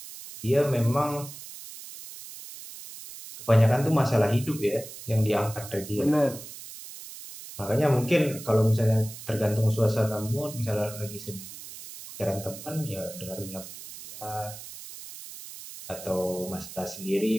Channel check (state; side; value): noise; right; hiss, 13 dB below the sound